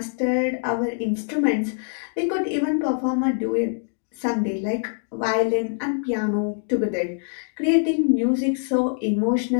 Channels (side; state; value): right; silent; 62 dB below the other